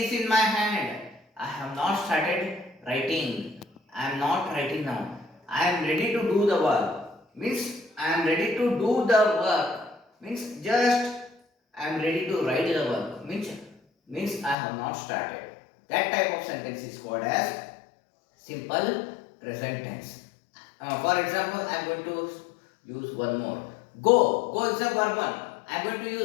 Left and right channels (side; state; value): right; drops out; at 14.6 s